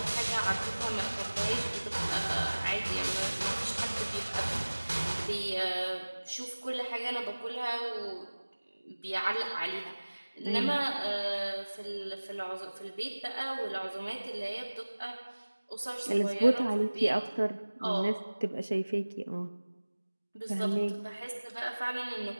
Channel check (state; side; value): inverted; both; correlation -1.00